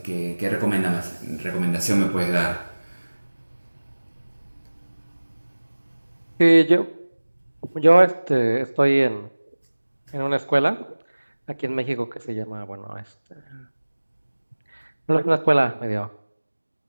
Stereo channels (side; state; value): both; inverted; correlation -1.00